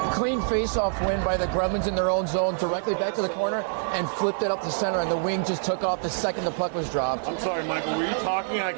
Clean face-off win by the Gremlins in their own zone, directly back to the corner, and flipped it up the center, and the wing just took off the second the puck was dropped. I'm sorry, Michael. Were you talking? I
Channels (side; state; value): left; silent; digital silence